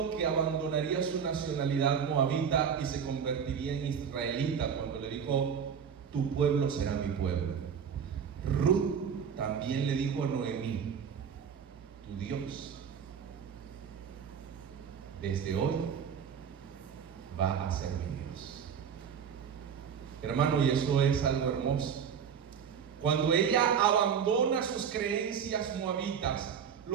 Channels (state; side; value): quieter; left; 7.4 dB